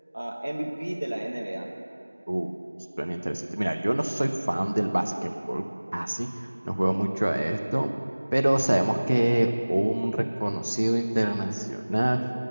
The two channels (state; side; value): inverted; both; correlation -1.00